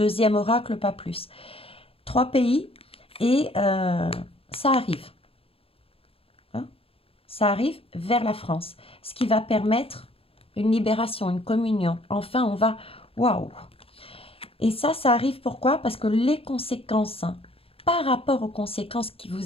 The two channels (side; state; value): right; late; 0.27 ms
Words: oracle, pas plus. 3 pays et ça arrive. Hein, ça arrive vers la France. Ce qui va permettre une libération, une communion. Enfin, on va... Waouh! Et ça arrive pourquoi? Parce que les conséquences... par rapport aux conséquences que